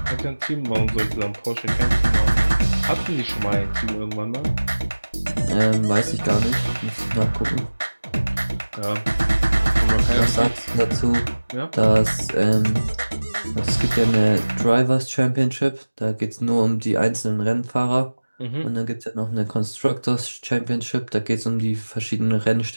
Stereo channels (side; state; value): both; inverted; correlation -1.00